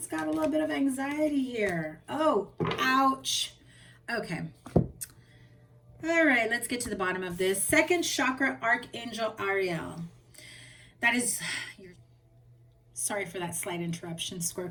got a little bit of anxiety here. Oh, ouch. Okay. All right, let's get to the bottom of this. Second chakra, Archangel Ariel. That is, sorry for that slight interruption,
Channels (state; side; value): identical; both; correlation 1.00